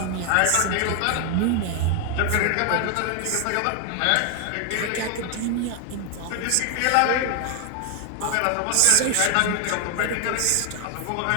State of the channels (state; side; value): different; both; correlation 0.00